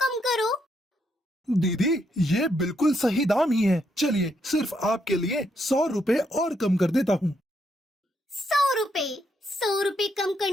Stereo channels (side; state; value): both; normal; correlation 0.77